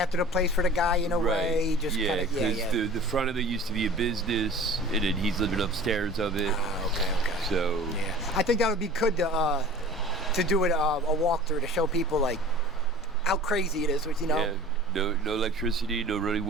the place for the guy in a way. Just because the front of it used to be a business, and then he's living upstairs of it. Okay. So I think that would be good to do it a walkthrough to show people like how crazy it is, Yeah, no electricity, no running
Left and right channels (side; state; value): both; normal; correlation 0.42